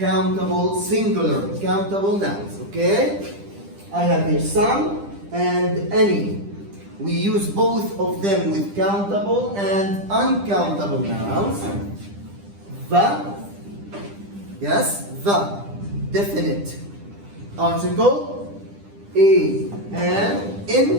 singular, countable nouns, okay? I have here some and any. We use both of them with countable and uncountable nouns. The, yes, the, definite article, a, and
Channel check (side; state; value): left; late; 10 ms